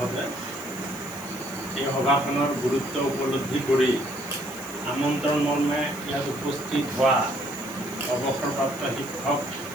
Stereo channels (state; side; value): noise; right; hiss, 17 dB below the sound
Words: এই সভাখনৰ গুৰুত্ব উপলব্ধি কৰি আমন্ত্ৰণ মৰ্মে ইয়াত উপস্থিত হোৱা অৱসৰপ্ৰাপ্ত শিক্ষক